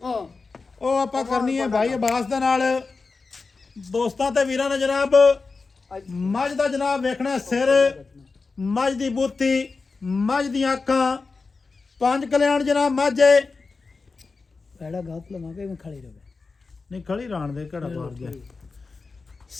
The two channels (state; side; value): quieter; right; 4.2 dB